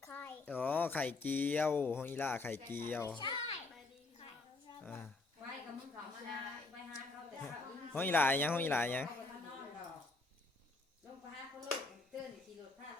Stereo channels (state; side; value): quieter; right; 3.5 dB